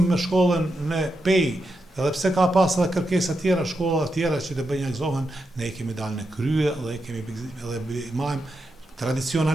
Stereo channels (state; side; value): normal; both; correlation 0.86